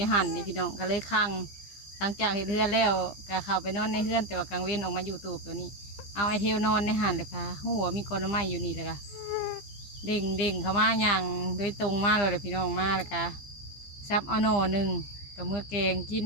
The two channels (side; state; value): right; late; 15 ms